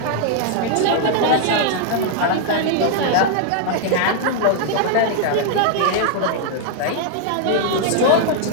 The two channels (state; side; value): different; both; correlation 0.00